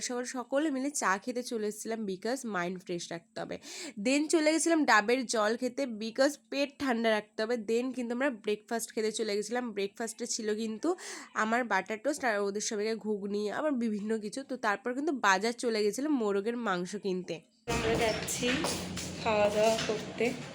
সকাল সকলে মিলে চা খেতে চলে এসেছিলাম, বিকজ মাইন্ড ফ্রেশ রাখতে হবে। দেন চলে গেছিলাম ডাবের জল খেতে, বিকজ পেট ঠান্ডা রাখতে হবে। দেন কিন্তু আমরা ব্রেকফাস্ট খেতে চলে গেছিলাম। ব্রেকফাস্টে ছিল কিন্তু আমার বাটার টোস্ট আর ওদের সবাইকে ঘুগনি, আবার বিভিন্ন কিছু। তো তারপর কিন্তু বাজার চলে গেছিলাম মোরগের মাংস কিনতে। আমরা যাচ্ছি খাওয়া দাওয়া করতে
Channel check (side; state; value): both; identical; correlation 1.00